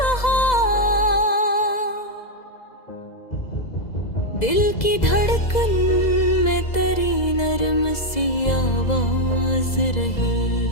दिल की धड़कन में तेरी नरम सी आवाज रही।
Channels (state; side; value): late; right; 2.0 ms